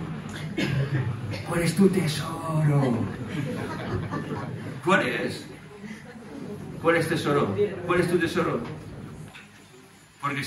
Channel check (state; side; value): identical; both; correlation 1.00